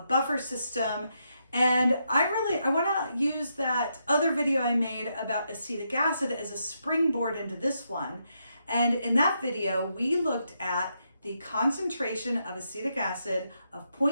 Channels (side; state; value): both; inverted; correlation -0.80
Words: system. And I want to use that other video I made about acetic acid as a springboard into this one. And in that video, we looked at the concentration of acetic acid of